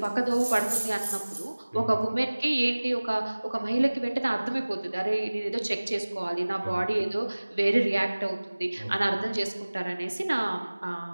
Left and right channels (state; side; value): inverted; both; correlation -1.00